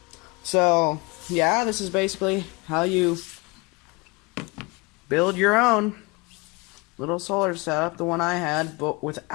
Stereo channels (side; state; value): right; quieter; 27.2 dB